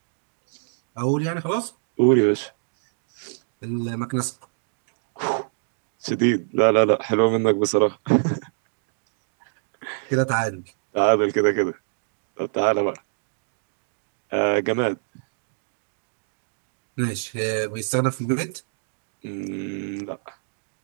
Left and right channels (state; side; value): silent; left; digital silence